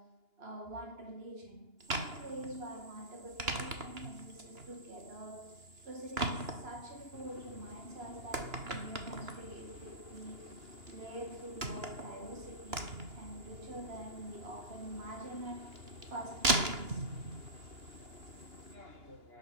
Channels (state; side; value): late; left; 2.9 ms